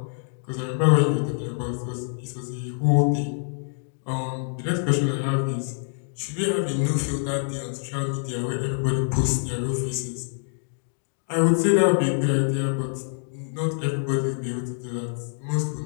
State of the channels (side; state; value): right; silent; digital silence